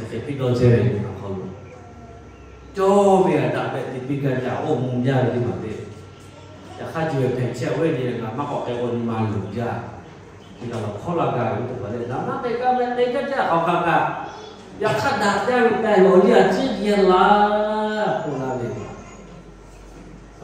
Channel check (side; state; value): both; identical; correlation 1.00